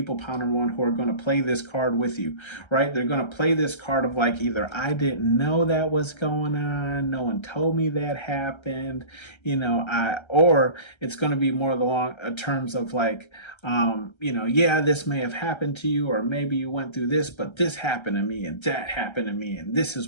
pound number one, who are going to play this card with you, right? They're going to play this card of like, either I didn't know that was going on, no one told me that happened, or it's going to be more along terms of like, yeah, this may have happened to you, or maybe you went through this, but this happened to me and that happened to me, and this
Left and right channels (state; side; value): late; right; 1.3 ms